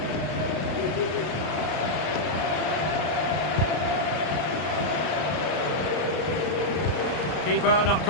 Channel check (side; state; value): right; late; 33 ms